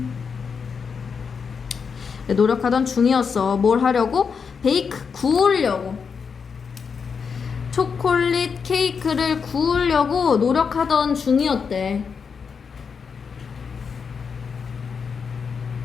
네, 노력하던 중이었어. 뭘 하려고? 베이크, 구우려고. 초콜릿 케이크를 구우려고 노력하던 중이었대.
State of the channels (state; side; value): quieter; right; 6.0 dB